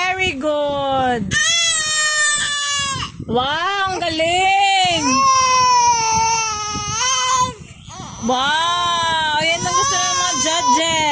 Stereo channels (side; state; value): both; identical; correlation 1.00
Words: good. Wow, ang galing. Wow, yan ang gusto ng mga